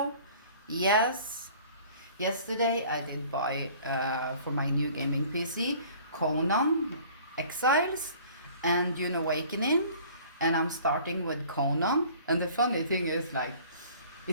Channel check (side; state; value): both; inverted; correlation -0.50